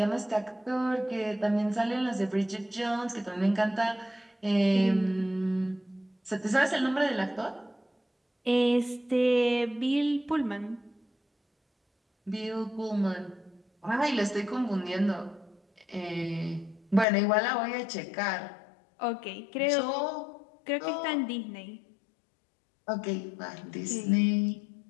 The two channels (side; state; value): right; drops out; at 17.1 s